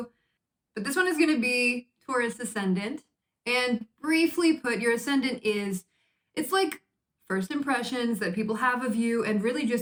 but this one is gonna be Taurus Ascendant. And briefly put, your Ascendant it's like first impressions that people have of you and really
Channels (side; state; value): both; identical; correlation 1.00